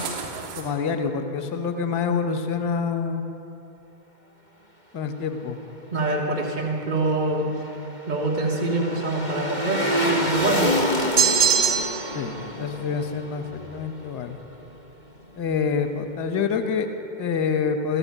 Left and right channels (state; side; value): late; left; 2.2 ms